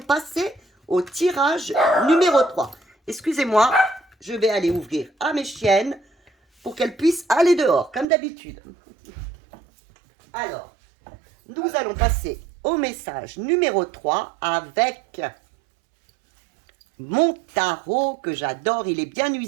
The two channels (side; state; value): left; drops out; at 8.1 s